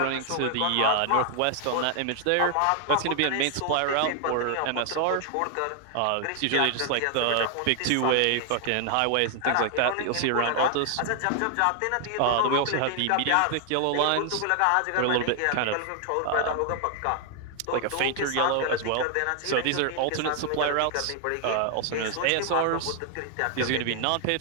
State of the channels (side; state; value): both; different; correlation 0.00